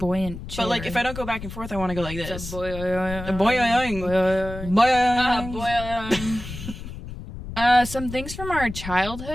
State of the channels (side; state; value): left; noise; rumble, 10 dB below the sound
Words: chair. But, like, if I don't go back and forth, I want to go like this. It's a boing. Some things from our